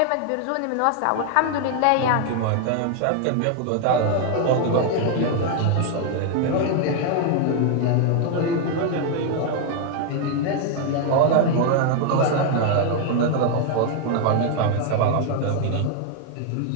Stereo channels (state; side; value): different; both; correlation 0.00